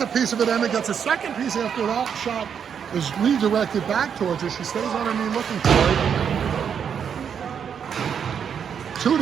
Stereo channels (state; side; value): quieter; left; 7.6 dB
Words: piece of it. Emma gets a second piece after that shot is redirected back towards her. She stays on her knee looking for it.